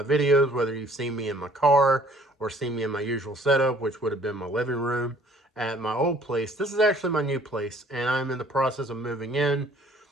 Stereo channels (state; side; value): normal; both; correlation 0.57